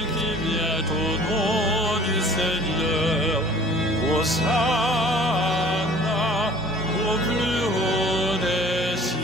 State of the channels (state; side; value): normal; both; correlation 0.49